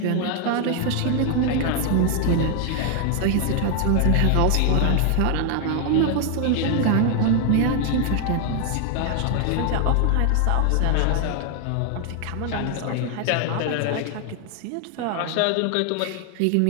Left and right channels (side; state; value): both; different; correlation 0.00